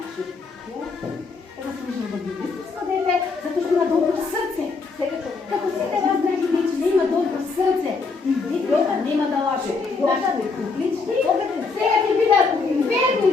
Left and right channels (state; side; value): quieter; right; 4.3 dB